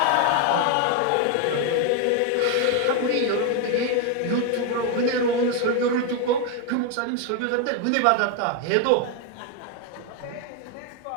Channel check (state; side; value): different; both; correlation 0.01